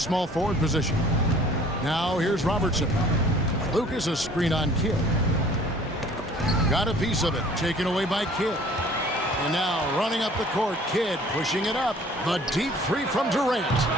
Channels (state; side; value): normal; both; correlation 0.52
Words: forward position. Now here's Robertson. Lucas a screen on Kidd. Got a piece of it, taken away by Kidd. And now running up the court, Kidd pushing it up. The deep three from Durant.